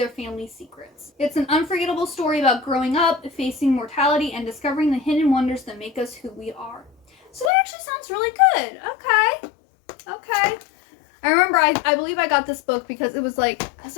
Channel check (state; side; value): drops out; right; at 7.5 s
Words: family's secrets. It's an unforgettable story about growing up, facing mortality, and discovering the hidden wonders that make us who we are. So that actually sounds really good. Okay. I remember, I believe I got this book because it was like, I was